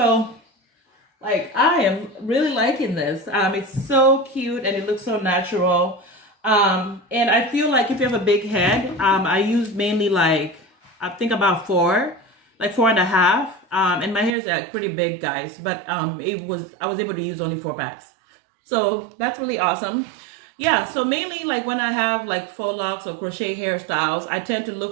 like I am really liking this. It's so cute and it looks so natural. And I feel like if you have a big head, I use mainly like, I think about 4, like 4.5. And my hair is like pretty big, guys, but I was able to use only 4 packs. So that's really awesome. Yeah, so mainly like when I have like Faux Locs or crochet hairstyles, I tend to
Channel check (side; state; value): left; drops out; at 14.3 s